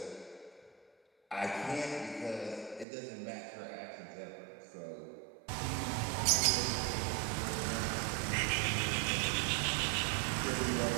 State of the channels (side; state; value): left; drops out; at 2.9 s